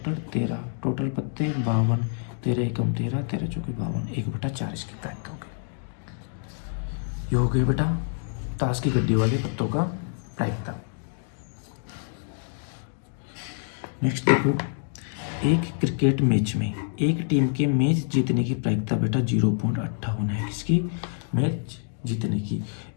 13, टोटल पत्ते 52, 13 एकम 13, 13 चौके 52, 1/4 इसकी प्रायिकता होगी। ये हो गए बेटा ताश की गड्डी वाले पत्तों का प्रायिकता। नेक्स्ट देखो, एक क्रिकेट मैच में एक टीम के मैच जीतने की प्रायिकता बेटा 0.58 है। किसकी? मैच जीतने की।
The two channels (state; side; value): silent; right; 60 dB below the other